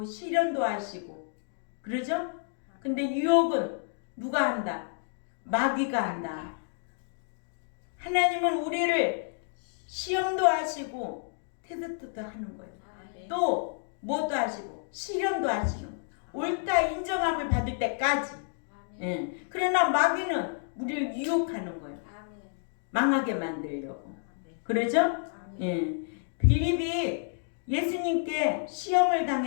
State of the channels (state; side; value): silent; right; digital silence